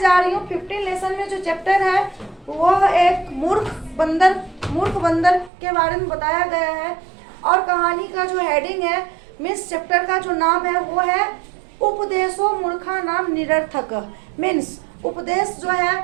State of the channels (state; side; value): drops out; left; at 5.5 s